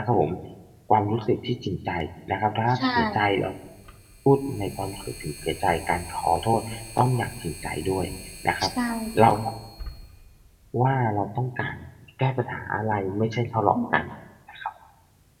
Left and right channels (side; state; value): both; identical; correlation 1.00